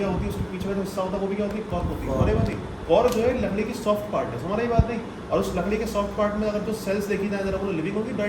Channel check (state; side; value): identical; both; correlation 1.00